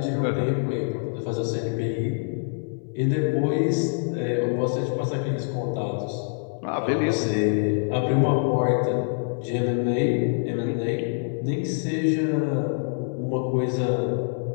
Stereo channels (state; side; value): silent; right; 62 dB below the other